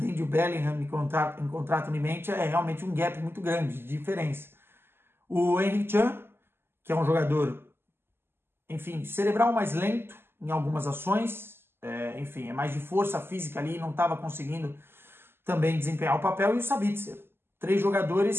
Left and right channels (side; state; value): left; late; 0.11 ms